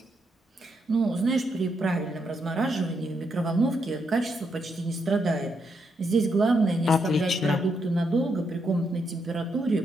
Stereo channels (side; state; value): both; normal; correlation 0.79